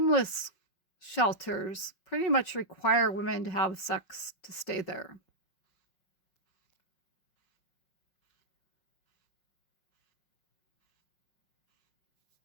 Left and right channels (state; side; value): late; right; 5.5 ms